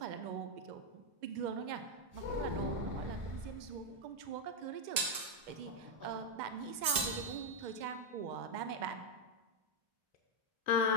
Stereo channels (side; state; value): left; late; 2.0 ms